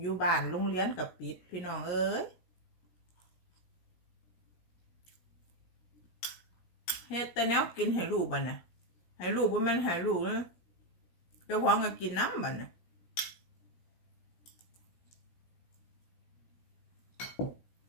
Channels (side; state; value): right; late; 17 ms